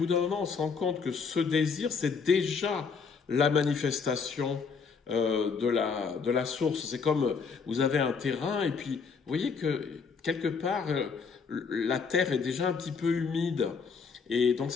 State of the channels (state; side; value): quieter; right; 5.4 dB